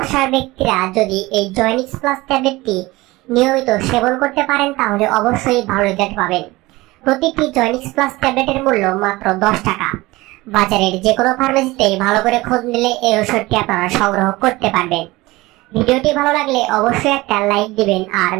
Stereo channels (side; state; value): left; quieter; 20.4 dB